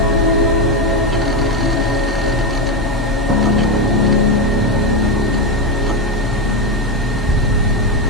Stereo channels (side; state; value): both; normal; correlation 0.12